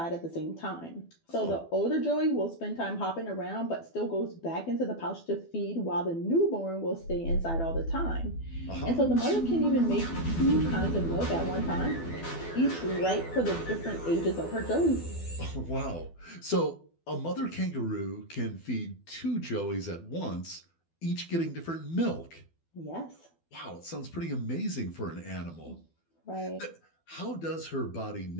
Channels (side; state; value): right; late; 12 ms